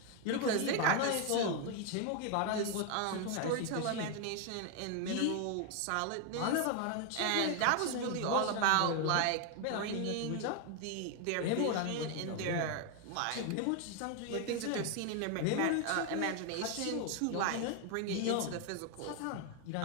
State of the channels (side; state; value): both; different; correlation 0.01